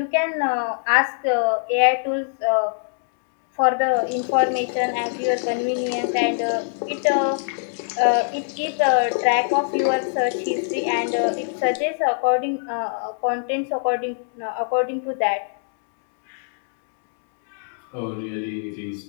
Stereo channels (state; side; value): silent; right; digital silence